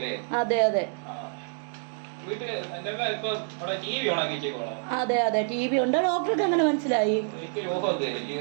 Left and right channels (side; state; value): left; silent; 60 dB below the other